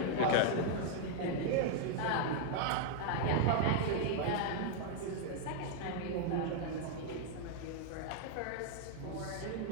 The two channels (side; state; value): both; different; correlation 0.00